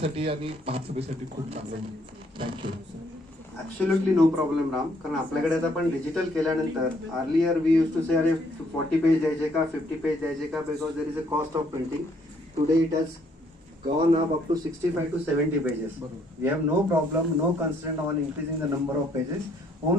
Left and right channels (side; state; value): both; normal; correlation 0.67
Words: आणि महासभेसाठी खूप चांगलं होईल. Thank you. Absolutely no problem Ram. कारण आपल्याकडे आता पण डिजिटल केल्यानंतर earlier we use to say अरे 40 पेज द्यायचे का 50 पेज द्यायचे का, because there is a cost of printing. Today it has gone up to 65 to 70 pages. We have no problem, no constraint on increasing the number of pages.